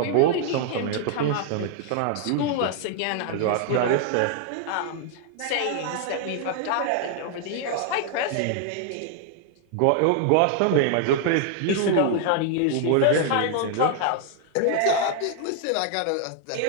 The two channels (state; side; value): different; both; correlation 0.00